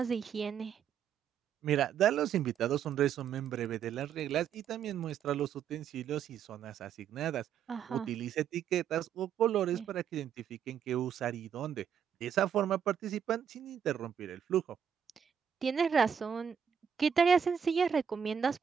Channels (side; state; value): left; quieter; 8.0 dB